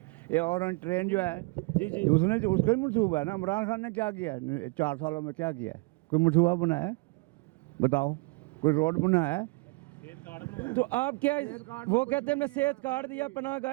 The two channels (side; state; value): left; quieter; 27.2 dB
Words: ये और ट्रेन जो है जी उसने उसका ही मनसूबा है ना। इमरान खान ने क्या किया है 4 सालों में, क्या किया है? कोई मनसूबा बनाया है? बताओ, कोई रोड बनाया है? तो आप क्या वो कहते हैं हमने सेहत कार्ड दिया, पनाह